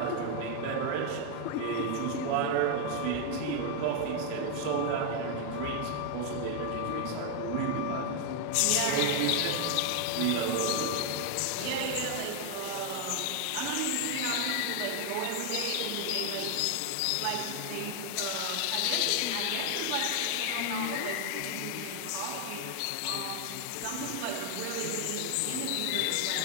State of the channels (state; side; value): different; both; correlation 0.00